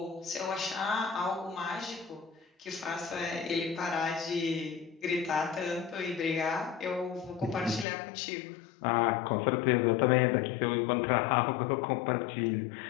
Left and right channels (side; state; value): right; drops out; at 7.9 s